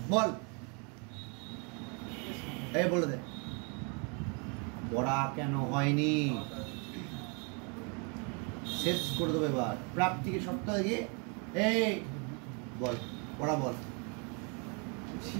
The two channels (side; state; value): left; quieter; 35.1 dB